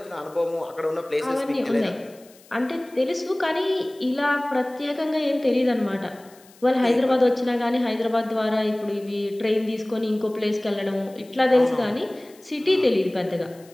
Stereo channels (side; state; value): left; noise; hiss, 26 dB below the sound